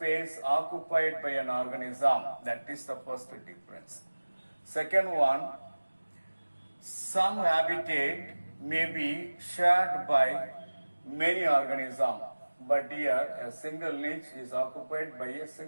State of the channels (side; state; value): both; inverted; correlation -1.00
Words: occupied by an organism. That is the first difference. Second one, some habitat may be shared by many organisms, but here a single niche is occupied by a